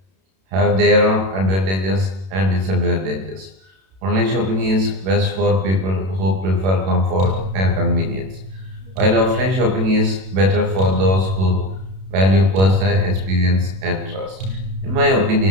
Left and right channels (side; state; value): left; late; 32 ms